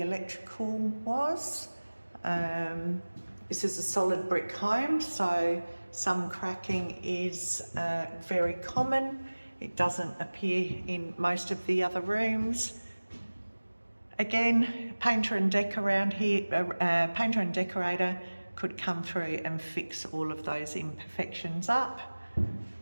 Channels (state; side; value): inverted; both; correlation -1.00